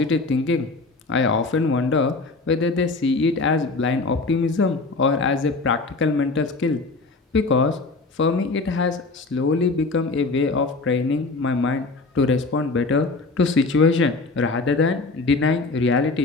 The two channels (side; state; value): right; quieter; 3.6 dB